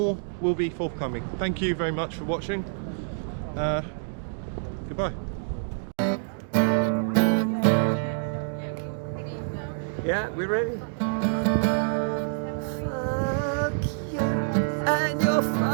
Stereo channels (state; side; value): silent; left; digital silence